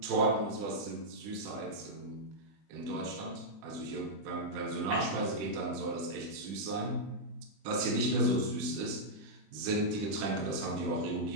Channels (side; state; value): left; late; 20 ms